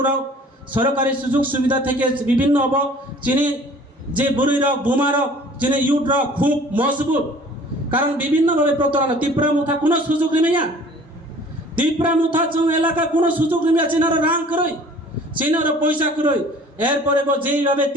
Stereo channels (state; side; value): normal; both; correlation 0.50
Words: सरकारि सुजुग सुविधा থেকে বিভিন্ন अब चिनि যে বুড়িরক বুমারক যিনি ইউটরক খুব মজবুত কারণ বিভিন্নভাবে প্রতারণা ত্রিপুরা মুথা কোনো সুযোগ নিমিয়া ত্রিপুরা মুথা जों এলাকা কোনো সুযোগ নিমিয়া চিনার রাং করই চিনার পয়সা করই এরপরে যেইভাবে